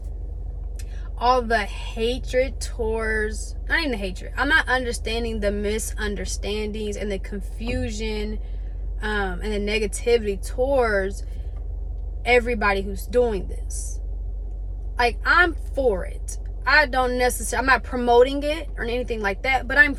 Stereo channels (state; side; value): identical; both; correlation 1.00